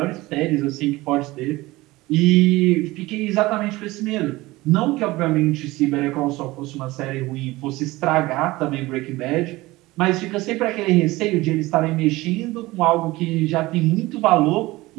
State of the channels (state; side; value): quieter; left; 19.8 dB